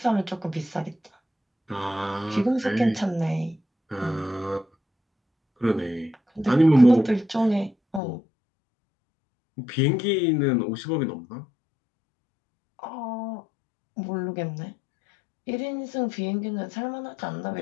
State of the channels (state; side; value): drops out; right; at 8.0 s